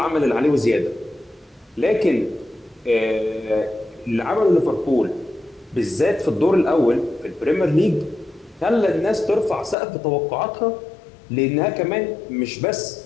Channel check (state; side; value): drops out; right; at 9.8 s